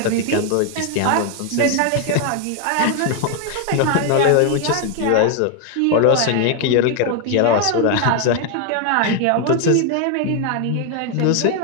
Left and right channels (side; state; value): both; different; correlation 0.01